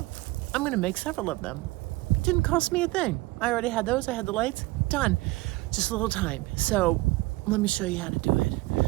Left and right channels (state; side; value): quieter; left; 20.6 dB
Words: I'm gonna make several of them. It didn't cost me a thing. I already had those, I had the lights, done. Just a little time. So let me show you how to do it.